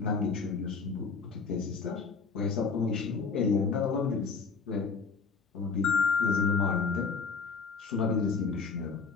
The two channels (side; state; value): right; quieter; 4.9 dB